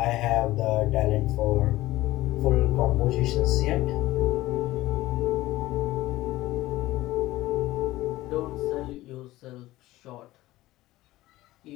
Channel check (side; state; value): right; quieter; 17.1 dB